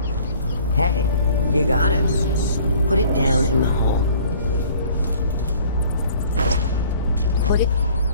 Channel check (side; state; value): both; inverted; correlation -0.52